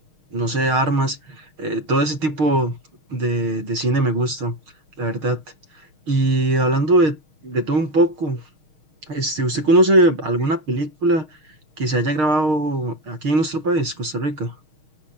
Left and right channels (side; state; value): left; late; 6.4 ms